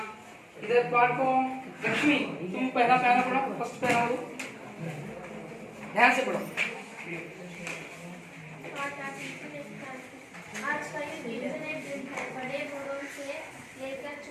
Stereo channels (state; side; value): identical; both; correlation 1.00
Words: इधर पाठ को लक्ष्मी तुम पहला पैरा पढ़ो, फर्स्ट पैरा पढ़ो, ध्यान से पढ़ो. आज का युग इंटरनेट युग है. बड़े बड़ों से लेकर